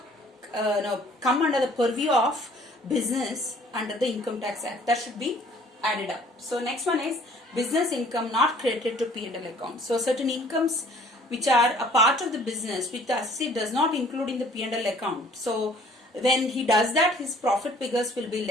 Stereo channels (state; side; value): normal; both; correlation 0.56